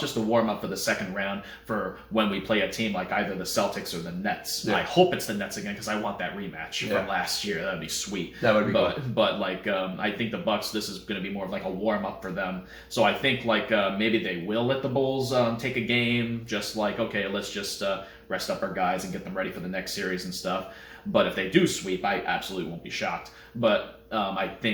a warm-up for the second round for when we play a team like either the Celtics or the Nets. Yeah. I hope it's the Nets again because I want that rematch from last year. That would be sweet. That would be cool. But I think the Bucks, this is going to be more of like a warm-up for them. So I think maybe they will let the Bulls take a game, just like, okay, let's just rest up our guys and get them ready for the next series and stuff. But if they do sweep, I absolutely won't be shocked. But I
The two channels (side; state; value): both; identical; correlation 1.00